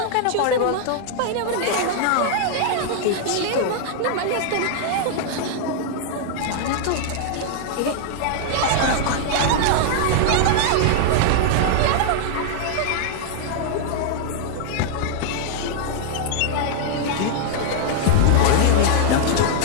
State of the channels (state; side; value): different; both; correlation 0.00